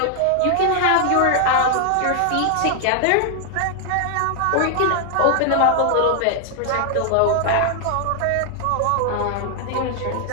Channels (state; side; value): different; both; correlation 0.00